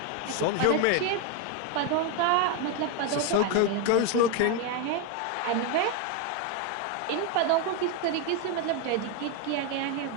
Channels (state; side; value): different; both; correlation 0.02